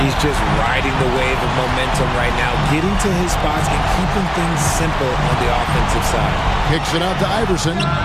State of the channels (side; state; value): both; identical; correlation 1.00